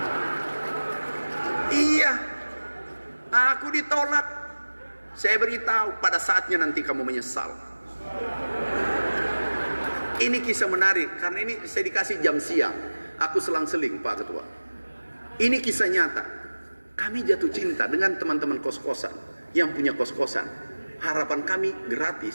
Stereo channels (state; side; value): inverted; both; correlation -1.00